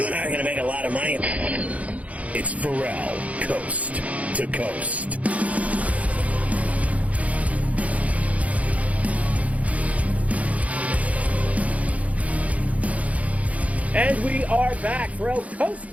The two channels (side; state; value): left; late; 0.068 ms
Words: and I are going to make a lot of money. It's Ferrall. Coast to coast. And we are back, Ferrall, Coast